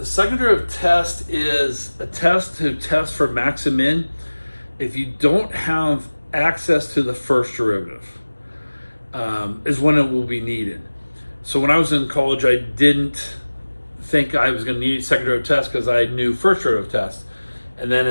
second derivative test is a test to test for max and min if you don't have access to the first derivative, is when it will be needed. So when I was in college, I didn't think I was going to need second derivative test because I knew first derivative test. And then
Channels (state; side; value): inverted; both; correlation -1.00